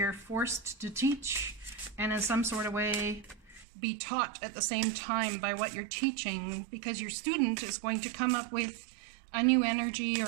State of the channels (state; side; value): drops out; left; at 3.7 s